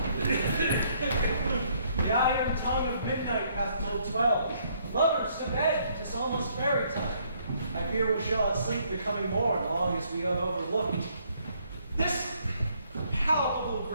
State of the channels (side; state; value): both; inverted; correlation -0.68